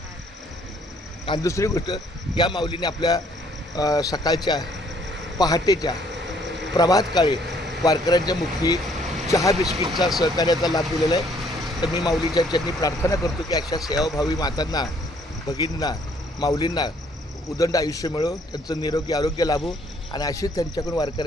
आणि दुसरी गोष्ट, या माऊलीने आपल्या सकाळच्या पहाटेच्या प्रभात काळी वारकऱ्यांच्या मुखी चहा बिस्किटचा सहकार्याचा लाभ दिलेला आहे. तर मी माऊलीच्या चरणी प्रार्थना करतो की अशा सेवाभावी मातांना, भगिनींना, माऊलींना उदंड आयुष्य मिळो, त्यांचं निरोगी आरोग्य लाभो आणि अशीच त्यांच्याकडून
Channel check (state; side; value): normal; both; correlation 0.63